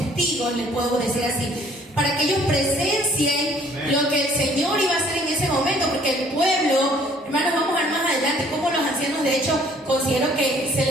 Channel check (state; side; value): normal; both; correlation 0.58